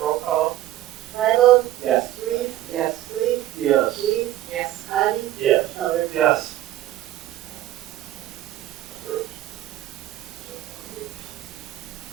call. Bible. Yes. Reese, Yes. Sleep, Yes. Weiss, Yes. Patty. Yes. Elder. Yes.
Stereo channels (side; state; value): left; quieter; 14.0 dB